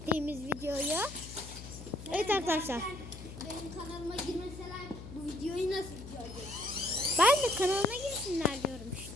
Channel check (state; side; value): noise; left; hum, 12 dB below the sound